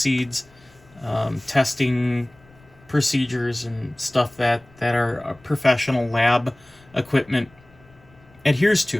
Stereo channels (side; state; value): left; noise; rumble, 28 dB below the sound